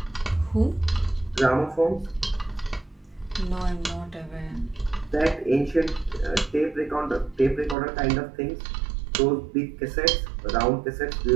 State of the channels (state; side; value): drops out; left; at 7.8 s